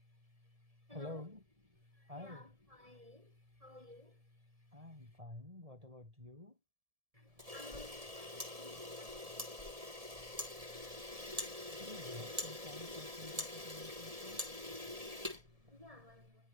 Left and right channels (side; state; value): left; late; 1.7 ms